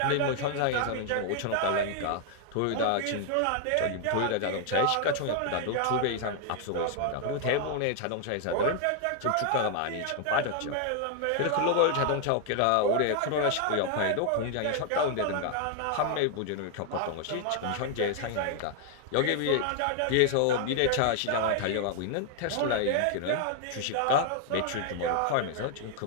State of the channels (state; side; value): different; both; correlation 0.00